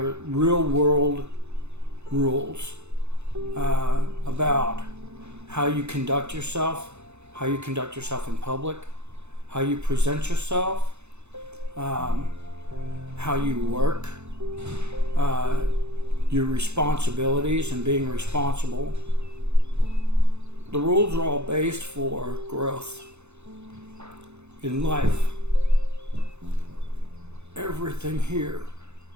real world rules about how you conduct yourself in public, how you present yourself, how you work, your responsibilities and being responsible. The rules are all based for growth in life. Everything here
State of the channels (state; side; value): late; left; 0.81 ms